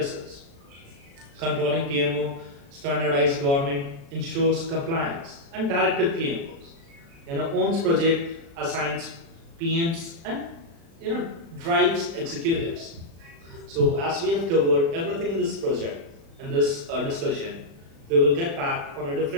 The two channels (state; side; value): late; left; 36 ms